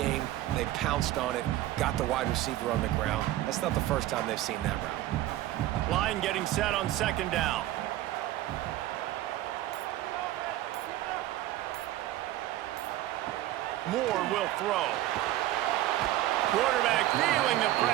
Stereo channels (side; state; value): left; quieter; 14.8 dB